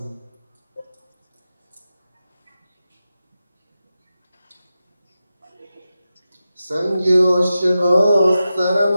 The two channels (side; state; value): both; inverted; correlation -0.92